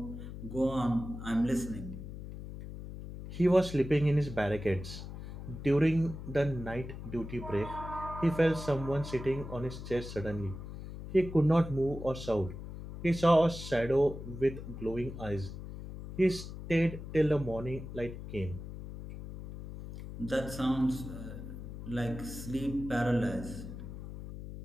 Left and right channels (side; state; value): left; noise; hum, 10 dB below the sound